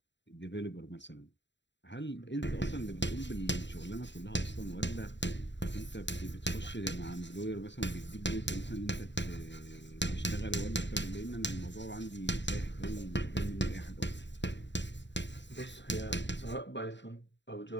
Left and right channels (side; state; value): right; late; 0.52 ms